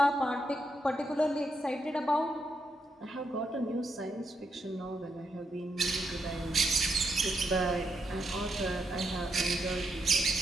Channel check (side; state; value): both; normal; correlation 0.81